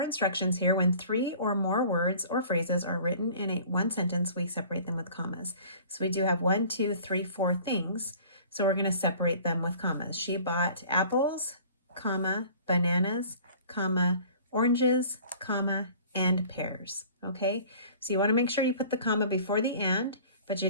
instructions here. When three or more words or phrases are written in one sentence, we separate them with commas. So we do have 1, 2, 3, 4 things. So we're going to separate them with commas. She bought apples, comma, bananas, comma, oranges, comma, and pears. Okay, so you want to make sure you put the comma before the and, but you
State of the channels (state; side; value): inverted; both; correlation -0.47